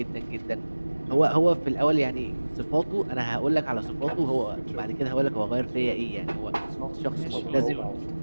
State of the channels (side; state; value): both; inverted; correlation -1.00